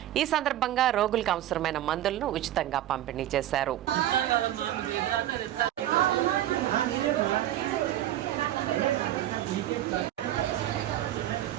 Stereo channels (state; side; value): quieter; left; 13.0 dB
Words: ఈ సందర్భంగా రోగులకు అవసరమైన మందులను ఉచితంగా పంపిణీ చేశారు.